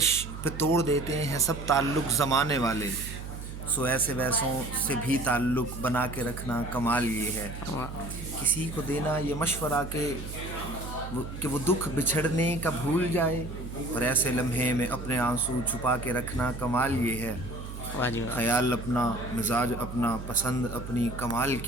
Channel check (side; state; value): right; noise; hum, 9 dB below the sound